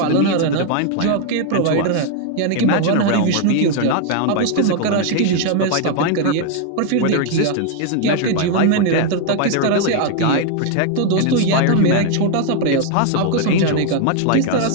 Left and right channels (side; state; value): both; different; correlation 0.00